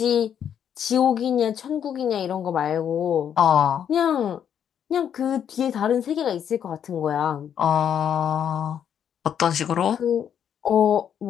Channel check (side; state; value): right; quieter; 8.8 dB